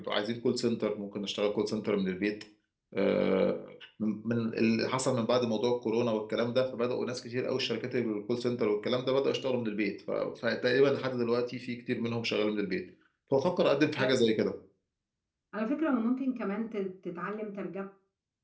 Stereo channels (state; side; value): identical; both; correlation 1.00